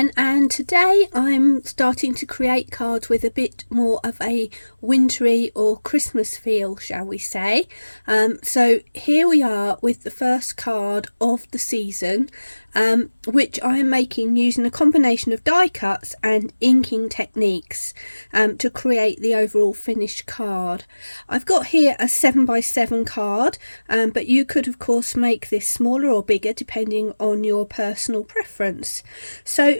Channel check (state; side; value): inverted; both; correlation -1.00